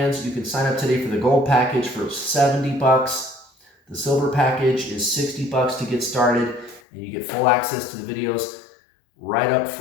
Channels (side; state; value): right; drops out; at 6.8 s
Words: You can sign up today for the gold package for $70. The silver package is $60 to get started, and you get full access to the videos right up